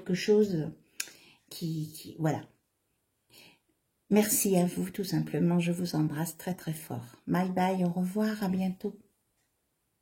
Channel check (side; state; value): both; identical; correlation 1.00